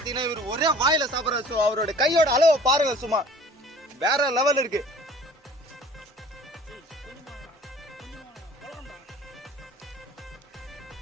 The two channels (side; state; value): both; normal; correlation 0.48